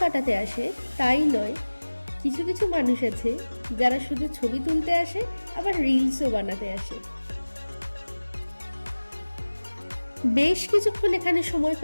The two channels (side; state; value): both; inverted; correlation -1.00